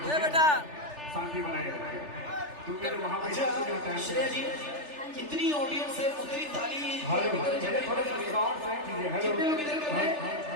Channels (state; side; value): late; left; 3.4 ms